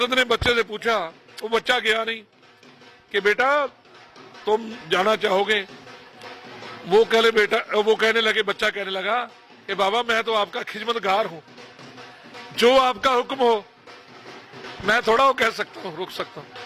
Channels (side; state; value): both; identical; correlation 1.00